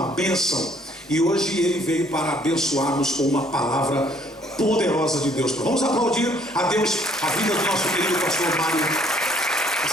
bênção, e hoje ele veio para abençoar-nos com uma palavra poderosa de Deus. Vamos aplaudir a Deus a vida do nosso querido pastor Mário.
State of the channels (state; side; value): normal; both; correlation 0.63